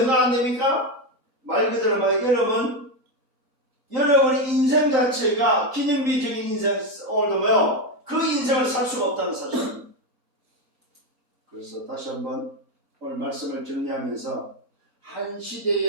안 됩니까? 말 그대로 여러분의 인생 자체가 기념비적인 인생, 오늘도 그 인생을 살 수가 없다는 사실입니다. 그래서 다시 한번 오늘 말씀을 정리하면서 한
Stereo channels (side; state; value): both; normal; correlation 0.10